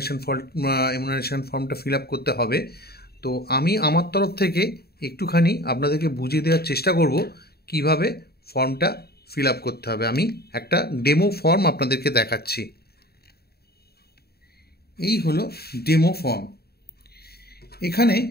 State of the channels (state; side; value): late; right; 0.46 ms